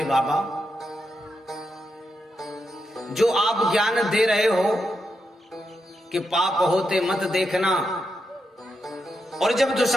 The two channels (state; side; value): normal; both; correlation 0.84